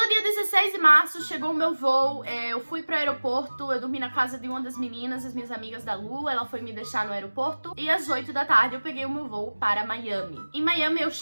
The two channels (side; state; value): both; inverted; correlation -1.00